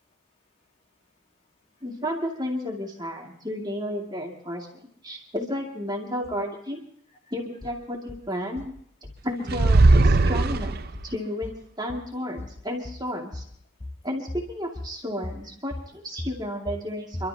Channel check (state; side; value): normal; both; correlation 0.80